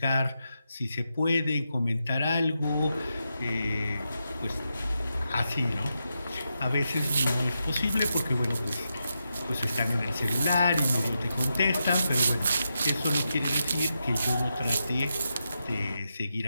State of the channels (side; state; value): both; inverted; correlation -0.86